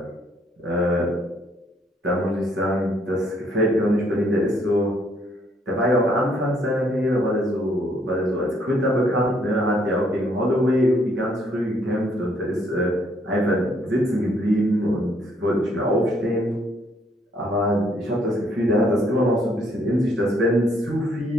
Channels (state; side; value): normal; both; correlation 0.68